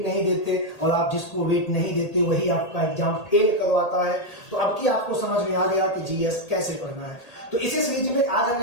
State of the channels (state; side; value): late; right; 1.8 ms